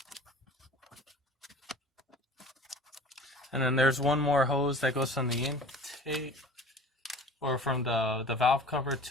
And then there's one more hose that goes from the intake or from the valve cover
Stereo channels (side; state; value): both; normal; correlation 0.43